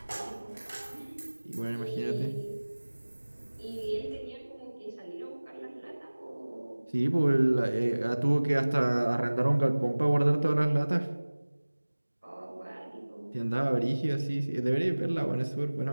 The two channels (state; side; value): inverted; both; correlation -1.00